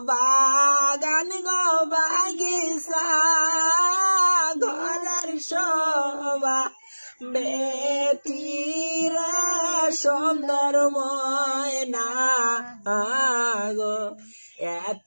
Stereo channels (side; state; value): both; inverted; correlation -1.00